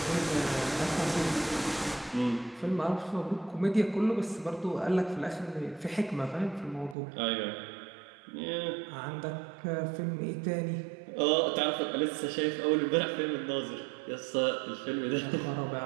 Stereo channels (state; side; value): drops out; left; at 7.0 s